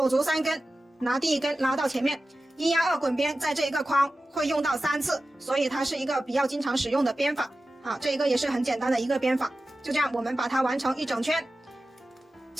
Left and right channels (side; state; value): both; normal; correlation 0.94